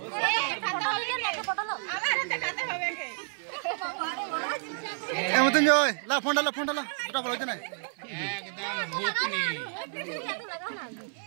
হবে না পটল আমার দেখাতে হবে কে এমতন জয় লা ফোন ডালা দুটা বলতে নাই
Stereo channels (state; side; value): silent; left; 55 dB below the other